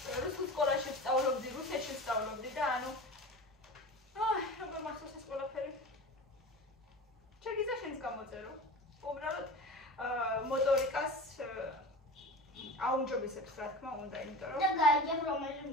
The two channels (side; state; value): both; normal; correlation 0.33